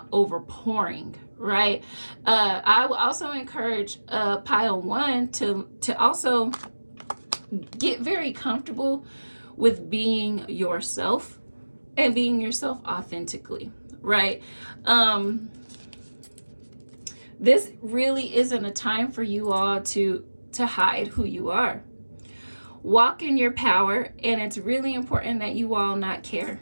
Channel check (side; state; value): both; inverted; correlation -1.00